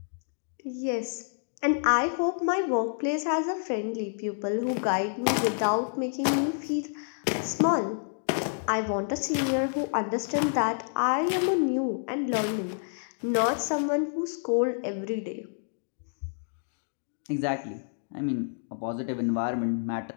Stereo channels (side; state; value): right; silent; digital silence